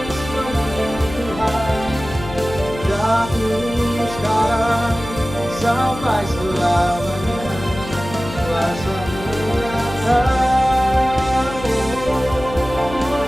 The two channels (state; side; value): noise; left; hum, 12 dB below the sound